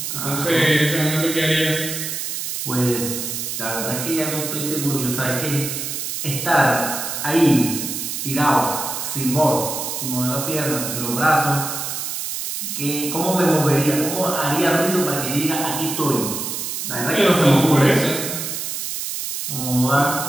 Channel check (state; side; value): noise; right; hiss, 4 dB below the sound